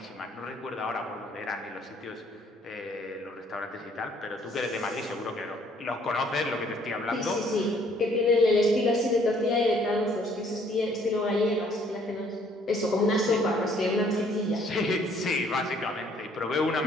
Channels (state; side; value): normal; both; correlation 0.62